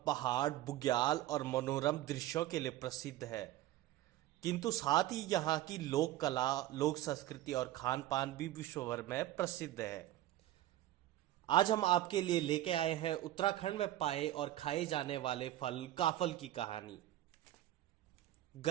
पहाड़, बुग्याल और मनोरम दृश्यों के लिए प्रसिद्ध है। किंतु साथ ही यहाँ की लोक कला, लोक संस्कृति और खान पान भी विश्व भर में प्रसिद्ध है। आज हम आपके लिए लेके आए हैं उत्तराखंड में पाए और खाए जाने वाले फल काफल की कहानी।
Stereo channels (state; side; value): quieter; left; 14.1 dB